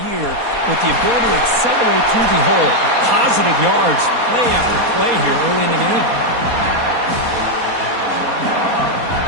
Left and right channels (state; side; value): late; left; 4.2 ms